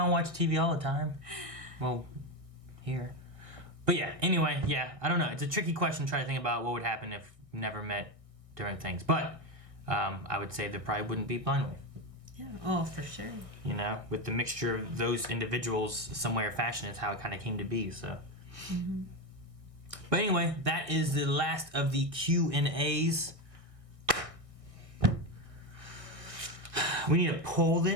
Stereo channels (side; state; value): left; late; 1.6 ms